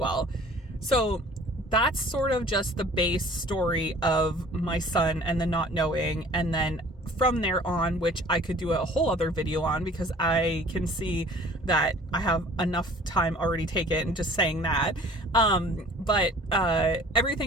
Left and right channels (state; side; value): normal; both; correlation 0.49